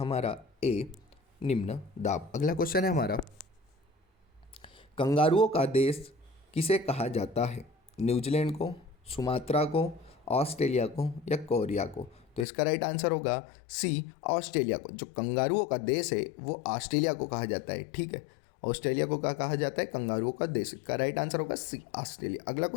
ए, निम्न दाब। अगला क्वेश्चन है हमारा, कंगारुओं का देश किसे कहा जाता है? न्यूजीलैंड को, सुमात्रा को, ऑस्ट्रेलिया को या कोरिया को? तो इसका राइट आंसर होगा सी, ऑस्ट्रेलिया को। जो कंगारुओं का देश है वो ऑस्ट्रेलिया को कहा जाता है। ठीक है, ऑस्ट्रेलिया को क्या कहा जाता है? कंगारुओं का देश। का राइट आंसर होगा सी, ऑस्ट्रेलिया। अगला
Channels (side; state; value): right; drops out; at 12.5 s